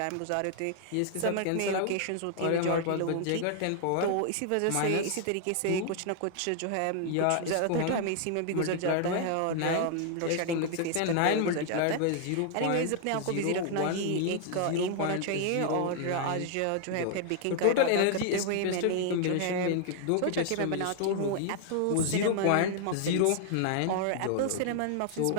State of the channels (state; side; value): different; both; correlation 0.00